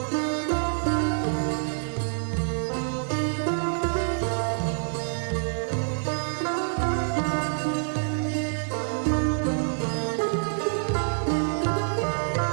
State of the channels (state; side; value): silent; left; 60 dB below the other